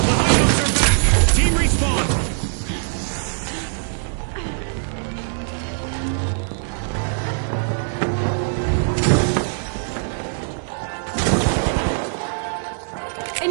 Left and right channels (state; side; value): silent; left; 65 dB below the other